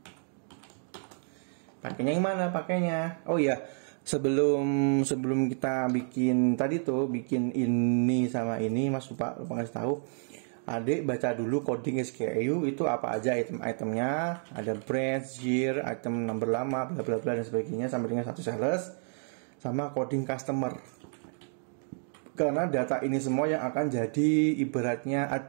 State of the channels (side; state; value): left; silent; 58 dB below the other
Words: Pakainya yang mana pakainya? Oh iya, sebelum kita bikin tadi tuh, bikin ini sama ini, Mas lupa ngasih tahu. Adik baca dulu coding SKU itu apa aja item-itemnya, ada branch, year, item number lama, bla bla bla dan sebagainya sampai dengan satu sales, sama coding customer. Karena data ini semua yang akan jadi ibaratnya